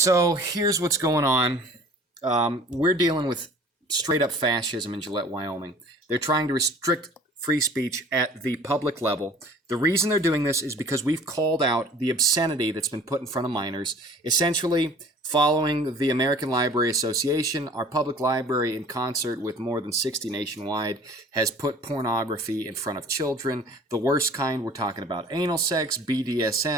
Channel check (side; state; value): both; normal; correlation 0.48